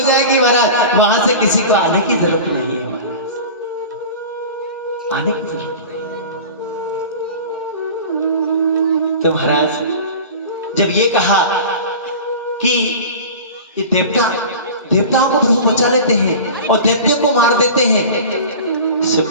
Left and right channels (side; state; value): both; inverted; correlation -0.35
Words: जाएगी महाराज, वहां से किसी को आने की जरूरत नहीं है महाराज, आने की जरूरत नहीं। तो महाराज जब ये कहा कि ये देवताओं को प्रभु बचा लेते हैं और दैत्यों को मार देते हैं,